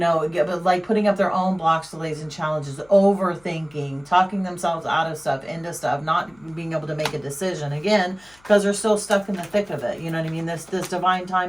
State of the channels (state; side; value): noise; left; hum, 30 dB below the sound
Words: like putting up their own blocks, delays, and challenges, overthinking, talking themselves out of stuff, into stuff, not being able to make a decision, again, because they're still stuck in the thick of it. You know what I mean? This divine